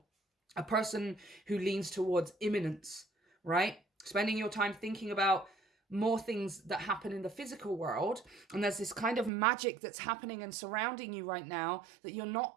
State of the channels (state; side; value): drops out; left; at 9.3 s